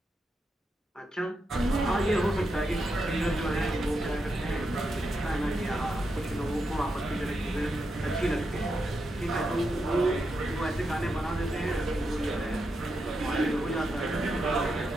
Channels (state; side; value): normal; both; correlation 0.85